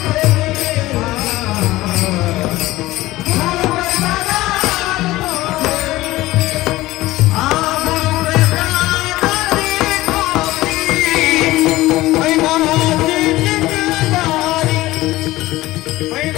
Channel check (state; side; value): quieter; right; 17.7 dB